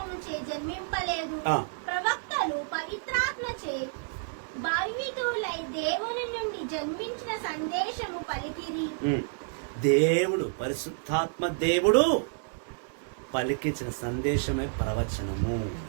జన్మింపలేదు. ప్రవక్తలు పవిత్రాత్మచే భావితులై దేవుని నుండి జన్మించిన సందేశము పలికిరి. దేవుడు, పరిశుద్ధాత్మ దేవుడు పలికించిన సందేశమే ప్రవచనము.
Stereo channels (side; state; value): left; silent; digital silence